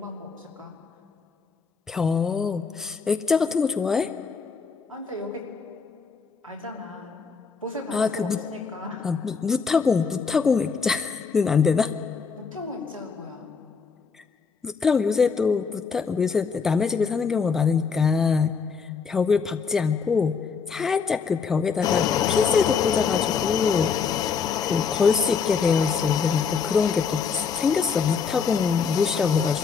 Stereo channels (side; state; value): right; quieter; 5.7 dB